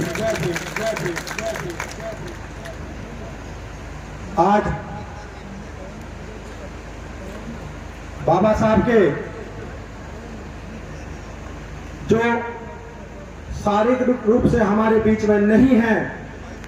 आज बाबा साहब के जो शारीरिक रूप से हमारे बीच में नहीं है,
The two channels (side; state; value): both; identical; correlation 1.00